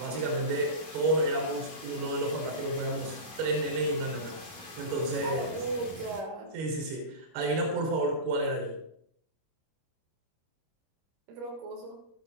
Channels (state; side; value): late; left; 25 ms